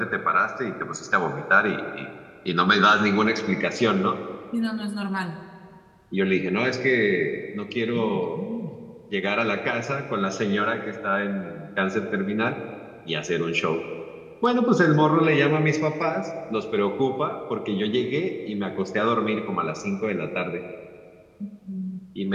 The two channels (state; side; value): identical; both; correlation 1.00